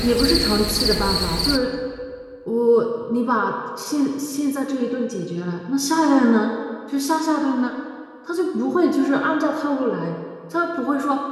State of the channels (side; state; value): both; identical; correlation 1.00